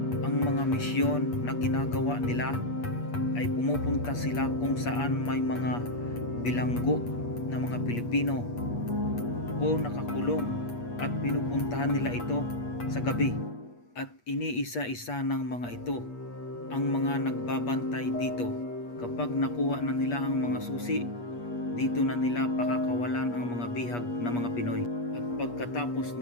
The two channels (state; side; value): late; right; 8.4 ms